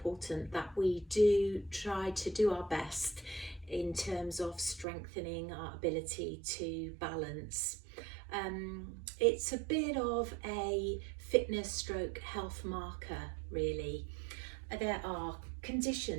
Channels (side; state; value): left; drops out; at 4.9 s